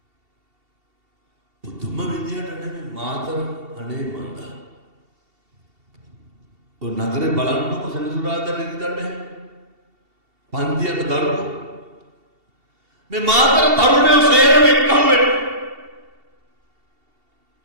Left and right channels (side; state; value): left; late; 2.7 ms